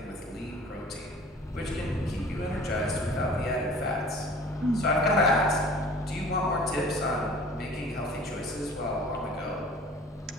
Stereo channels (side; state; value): both; normal; correlation 0.46